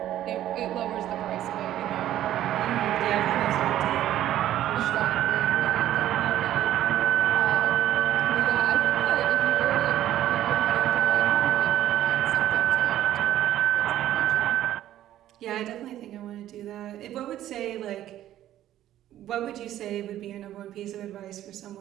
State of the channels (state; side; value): quieter; left; 12.7 dB